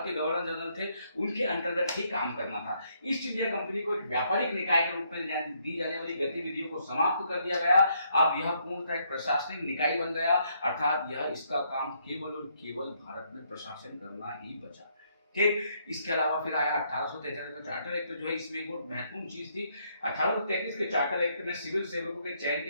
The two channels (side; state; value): both; inverted; correlation -0.72